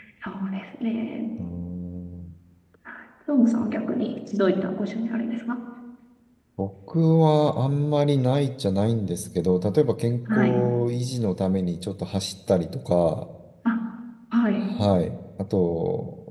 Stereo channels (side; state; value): both; identical; correlation 1.00